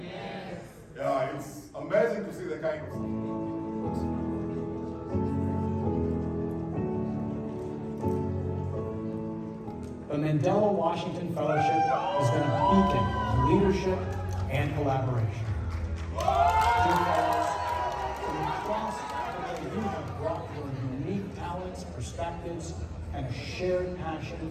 Yeah, it's amazing to see the kind of... The Mandela Washington Fellowship has been a beacon of leadership and collaboration. Dear fellows, from across Africa, you have brought your unique talents, perspectives, and a shared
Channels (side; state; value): both; identical; correlation 1.00